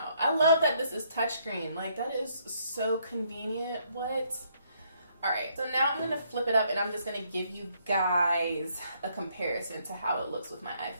I love that this is touchscreen. Like, that is so convenient. What? All right, so now I'm gonna flip it up and I'm just gonna give you guys a comparison to how it looks with my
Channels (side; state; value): both; inverted; correlation -0.70